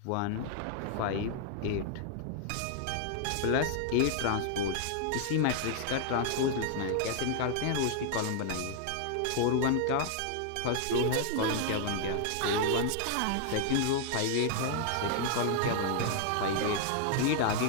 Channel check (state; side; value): different; both; correlation 0.00